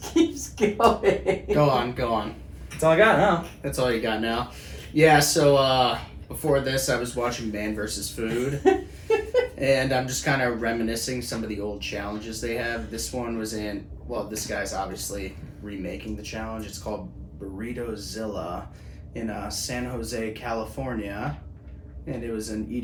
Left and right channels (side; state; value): both; identical; correlation 1.00